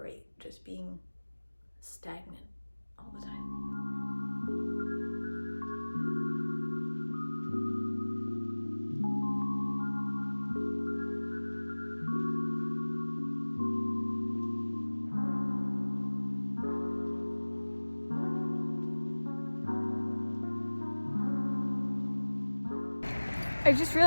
just being stagnant all the time. I just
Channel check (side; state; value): both; inverted; correlation -1.00